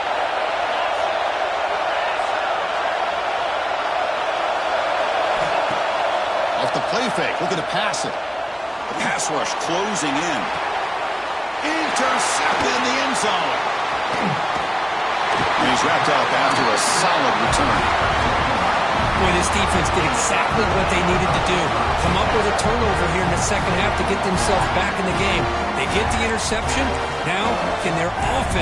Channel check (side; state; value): both; identical; correlation 1.00